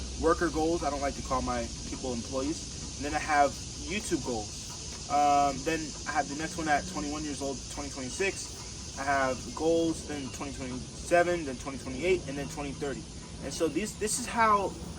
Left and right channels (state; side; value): identical; both; correlation 1.00